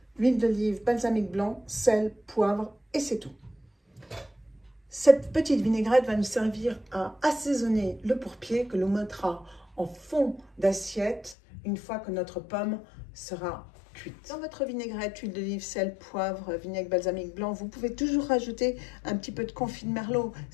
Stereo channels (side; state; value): right; drops out; at 11.4 s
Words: huile d'olive, balsamique blanc, sel, poivre et c'est tout. Cette petite vinaigrette va nous servir à assaisonner le pourpier que l'on mettra en fond d'assiette une fois que notre pomme sera cuite. Dans votre vinaigrette, huile d'olive, sel, poivre, vinaigre balsamique blanc, vous pouvez toujours rajouter un petit peu de confit de merlot.